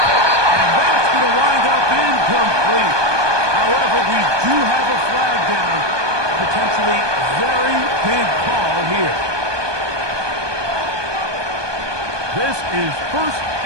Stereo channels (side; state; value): left; late; 1.2 ms